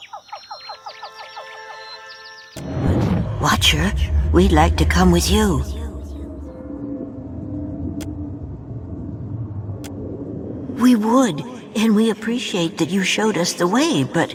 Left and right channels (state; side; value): identical; both; correlation 1.00